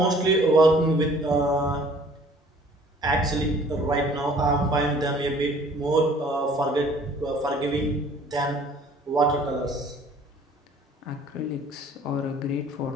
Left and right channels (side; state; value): both; normal; correlation 0.54